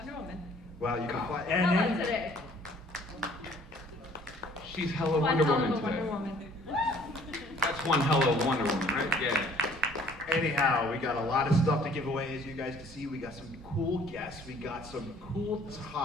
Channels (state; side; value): normal; both; correlation 0.56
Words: Woman. Wow, you can fly. How about today? She's hella One Wonder hell Woman of a today. Wonder Woman. That's one hella Wonder Woman, right? Yeah. Anyhow, we got a lot of stuff to give away, as you guys can see. We got some cool guests. We got some cool